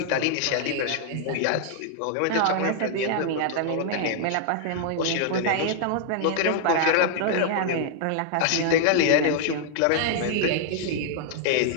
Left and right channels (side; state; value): both; different; correlation 0.00